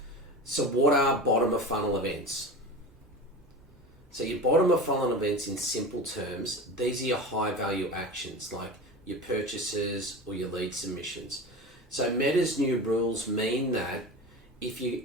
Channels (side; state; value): both; normal; correlation 0.31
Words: So what are bottom of funnel events? So your bottom of funnel events, in simple terms, these are your high value actions like your purchases or your lead submissions. So Meta's new rules mean that if you're